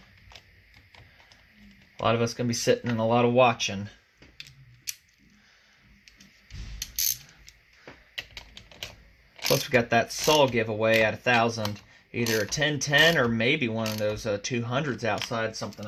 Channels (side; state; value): both; identical; correlation 1.00